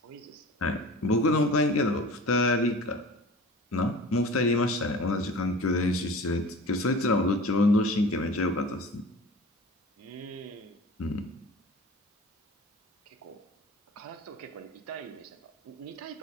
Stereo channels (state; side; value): normal; both; correlation 0.39